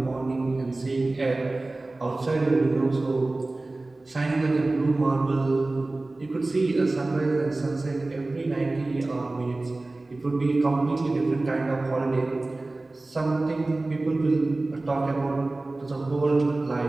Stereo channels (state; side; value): quieter; left; 3.0 dB